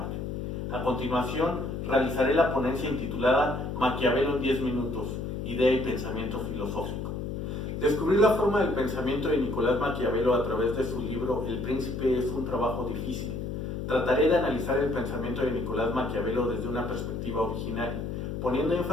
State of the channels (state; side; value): noise; left; hum, 4 dB below the sound